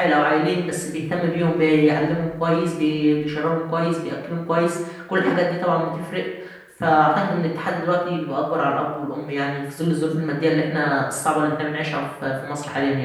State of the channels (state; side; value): identical; both; correlation 1.00